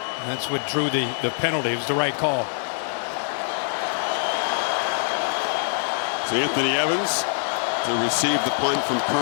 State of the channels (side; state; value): right; silent; digital silence